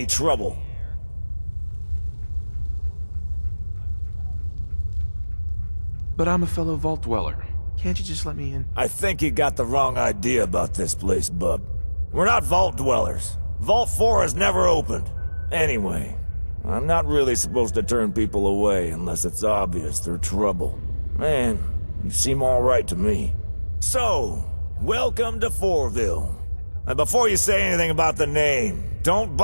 trouble. But I'm a fellow vault dweller. Can't you just let me in? I think you got the wrong idea about this place, bub. We're not vault dwellers. Vault 4 has never opened. Anyway, I'm not really supposed to turn people away unless it's obvious they're trouble. Man, you seem alright to me. So, welcome to Fourville. And before you say anything about the name, don't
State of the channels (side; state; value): both; inverted; correlation -1.00